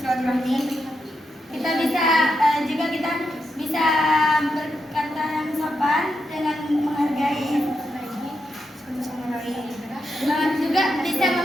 Kita bisa juga kita bisa berkata yang sopan dengan menghargai satu sama lain. Juga bisa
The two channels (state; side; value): normal; both; correlation 0.84